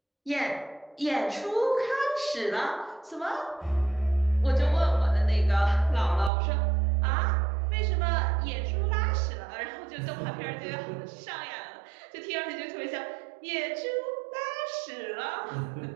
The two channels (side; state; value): left; drops out; at 6.3 s